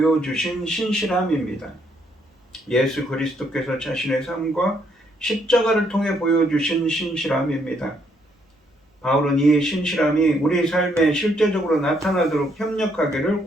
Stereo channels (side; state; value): both; normal; correlation 0.72